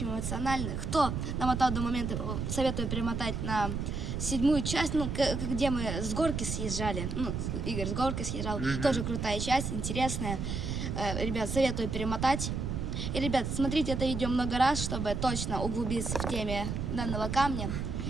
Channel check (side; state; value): right; noise; rumble, 3 dB below the sound